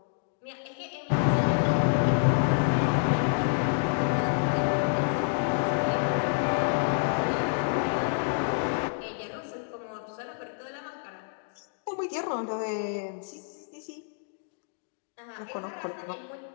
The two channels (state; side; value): silent; right; digital silence